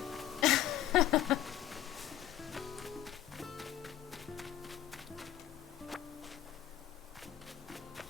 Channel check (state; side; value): quieter; right; 12.0 dB